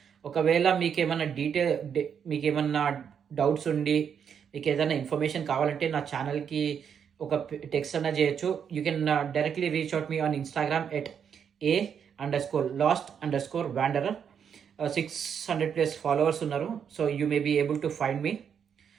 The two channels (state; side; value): quieter; left; 7.6 dB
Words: ఒకవేళ మీకేమన్నా డౌట్స్ ఉండి మీకేదైనా ఇన్ఫర్మేషన్ కావాలంటే నా ఛానల్‌కి ఒక టెక్స్ట్ అన్నా చేయొచ్చు. You can directly reach out me on Instagram at a_lost_wanderer. 600+ followers ఉన్నారు. So, you may be able to find me.